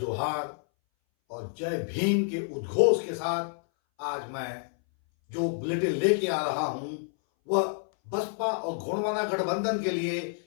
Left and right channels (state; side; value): silent; right; 59 dB below the other